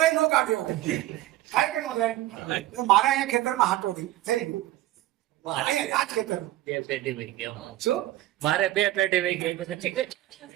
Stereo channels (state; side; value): quieter; left; 15.3 dB